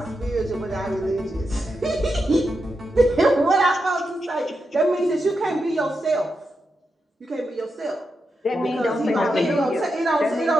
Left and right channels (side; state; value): both; normal; correlation 0.87